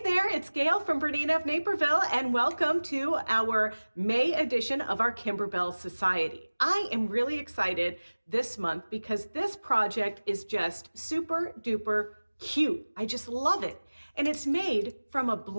there, it's Gayle from BERNINA of Nsperville, and welcome to our May edition of our Kimberbell Society. I am really excited this month because this project is just super duper cute. I just love it. And it's made from a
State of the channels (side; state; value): both; inverted; correlation -1.00